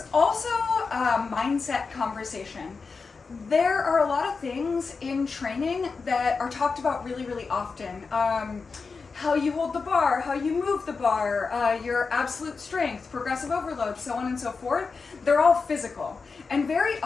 also a mindset conversation. There are a lot of things in training that are talked about really, really often. How you hold the bar, how you move the bar, your absolute strength, progressive overload, so on and so forth. They're all physical. And very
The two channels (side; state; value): right; quieter; 4.7 dB